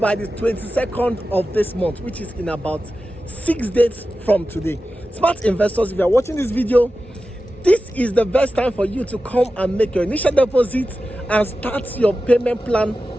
the 22nd of this month, which is in about 6 days from today. Smart investors, if you are watching this video, this is the best time for you to come and make your initial deposit and start your payment plan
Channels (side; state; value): both; normal; correlation 0.93